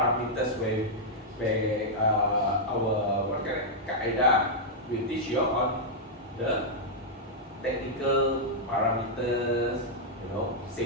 where our Qaeda will teach you on the technical parameters, you know,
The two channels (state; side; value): normal; both; correlation -0.05